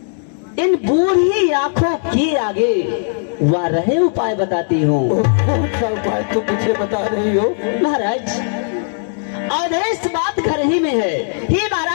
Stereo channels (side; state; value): right; silent; digital silence